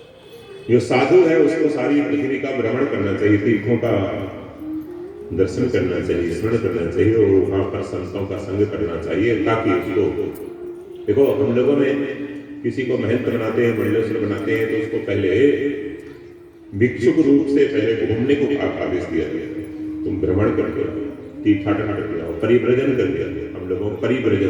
जो साधु है उसको सारी पृथ्वी का भ्रमण करना चाहिए, तीर्थों का दर्शन करना चाहिए, स्मरण करना चाहिए, और वहां पर संतों का संग करना चाहिए, ताकि उसको, देखो हम लोगों में किसी को महंत बनाते हैं, मंडलेश्वर बनाते हैं, तो उसको पहले भिक्षुक रूप से पहले घूमने को आदेश दिया गया। तुम भ्रमण करके आओ, तीर्थाटन करके आओ, परिव्रजन करके आओ। हम लोगों को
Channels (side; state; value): both; identical; correlation 1.00